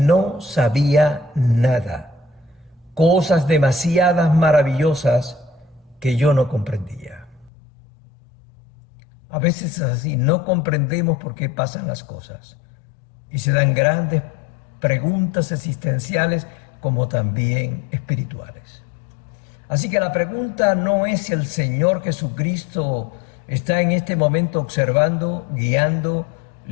sabía nada, cosas demasiadas maravillosas que yo no comprendía. A veces es así, no comprendemos por qué pasan las cosas y se dan grandes preguntas existenciales como también espirituales. Así que la pregunta no es si el Señor Jesucristo está en este momento observando, guiando,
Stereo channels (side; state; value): right; drops out; at 7.5 s